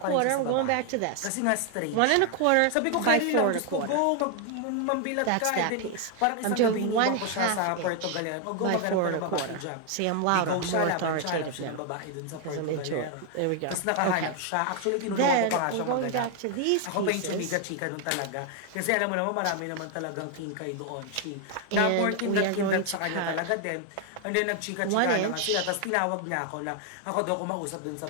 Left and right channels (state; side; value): different; both; correlation 0.00